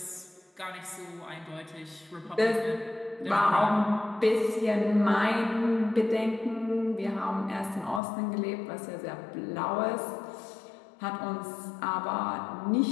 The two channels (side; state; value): right; drops out; at 8.0 s